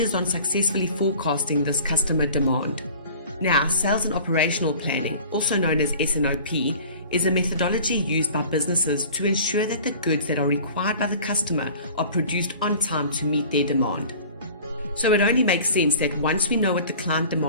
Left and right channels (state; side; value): inverted; both; correlation -0.44